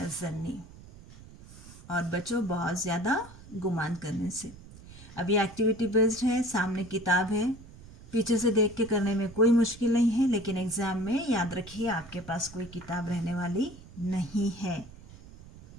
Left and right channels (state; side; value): noise; right; rumble, 19 dB below the sound